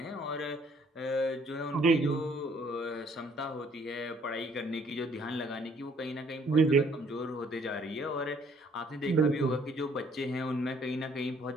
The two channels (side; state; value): both; normal; correlation 0.62